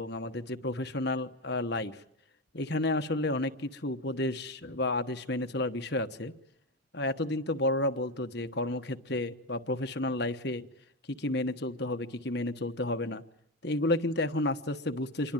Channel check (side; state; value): both; normal; correlation 0.15